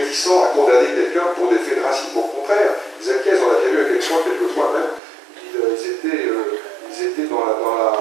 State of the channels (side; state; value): left; drops out; at 5.0 s